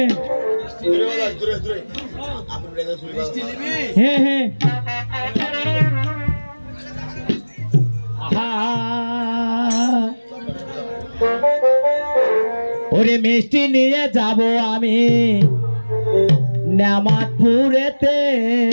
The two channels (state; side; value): inverted; both; correlation -1.00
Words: হ্যাঁ হ্যাঁ ওরে মিষ্টি নিয়ে যাব আমি নামাজপুরেতে,